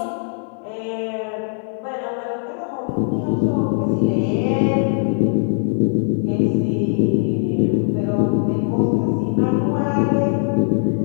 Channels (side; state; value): right; silent; digital silence